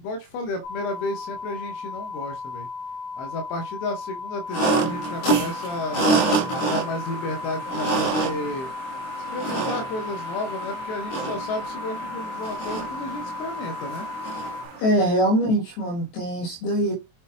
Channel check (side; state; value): right; late; 23 ms